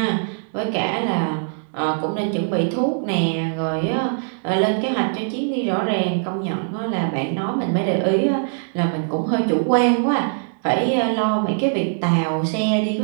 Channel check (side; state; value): left; silent; digital silence